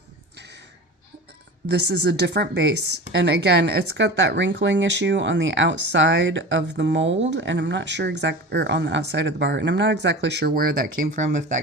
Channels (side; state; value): both; normal; correlation 0.33